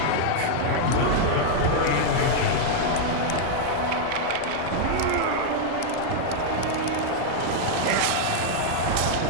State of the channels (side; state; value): both; different; correlation -0.01